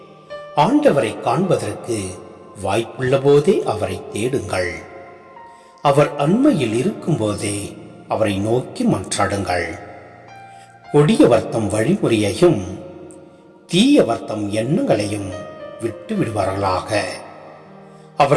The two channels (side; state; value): both; identical; correlation 1.00